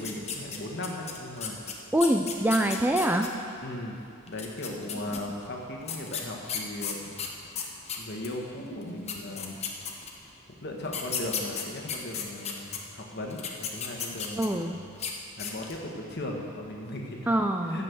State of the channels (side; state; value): both; normal; correlation 0.58